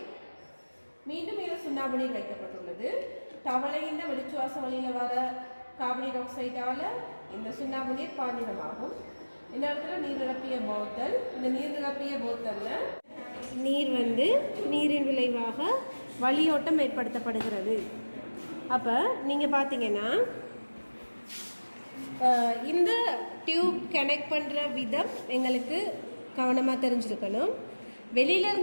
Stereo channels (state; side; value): inverted; both; correlation -1.00